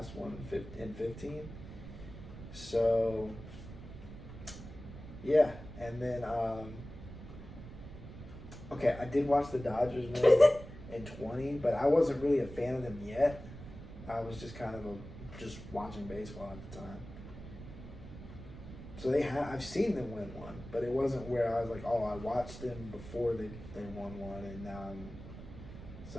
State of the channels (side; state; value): right; noise; rumble, 13 dB below the sound